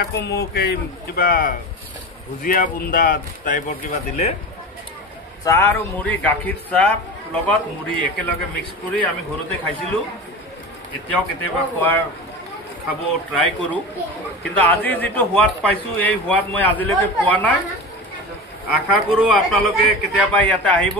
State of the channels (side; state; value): both; normal; correlation 0.29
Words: আকৌ মোক এই কিবা ভুজিয়া বুন্দা টাইপৰ কিবা দিলে। চাহ আৰু মুড়ি, গাখীৰ চাহ লগত মুড়ি একেলগে মিক্স কৰি আমি ঘৰতে খাইছিলোঁ। এতিয়াও কেতিয়াবা খাব ট্ৰাই কৰোঁ, কিন্তু আজি যিটো সোৱাদ পাইছোঁ এই সোৱাদ মই আজিলৈকে পোৱা নাই। আশা কৰোঁ আপোনালোকে কেতিয়াবা ইয়াতে আহিব,